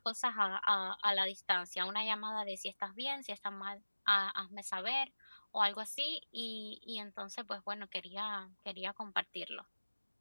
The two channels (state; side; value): inverted; both; correlation -1.00